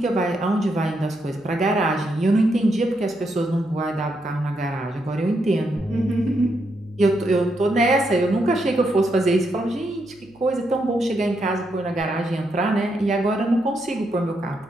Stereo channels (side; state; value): right; noise; hum, 28 dB below the sound